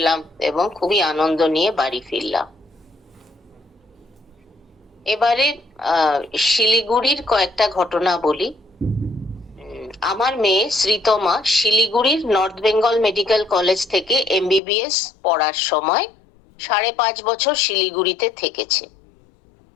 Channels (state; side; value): drops out; right; at 14.6 s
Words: এবং খুবই আনন্দ নিয়ে বাড়ি ফিরলাম। এবারে শিলিগুড়ির কয়েকটা ঘটনা বলি। আমার মেয়ে শ্রীতমা শিলিগুড়ির নর্থ বেঙ্গল মেডিকেল কলেজ থেকে এমবিবিএস পড়ার সময় 5.5 বছর শিলিগুড়িতে থেকেছে।